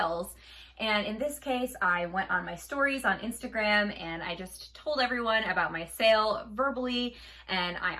And in this case, I went on my stories on Instagram and I just told everyone about my sale verbally. And I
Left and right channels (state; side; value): identical; both; correlation 1.00